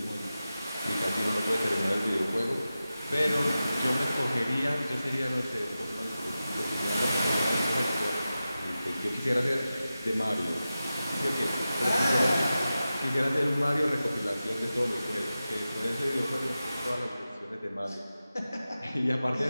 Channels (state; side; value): inverted; both; correlation -0.93